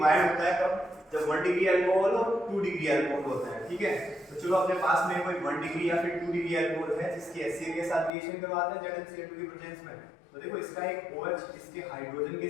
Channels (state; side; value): drops out; right; at 8.1 s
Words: होता है कब, जब 1 डिग्री अल्कोहल और 2 डिग्री अल्कोहल होता है, ठीक है। तो चलो अपने पास में कोई 1 डिग्री या फिर 2 डिग्री अल्कोहल है जिसकी HCl के साथ रिएक्शन करवाते हैं ZnCl2 की प्रेजेंस में। तो देखो इसका एक OH इसके हाइड्रोजन के